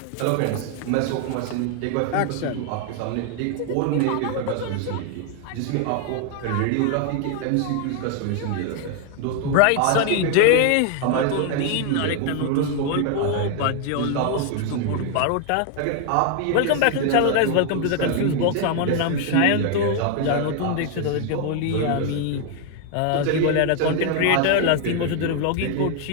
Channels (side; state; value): both; different; correlation 0.00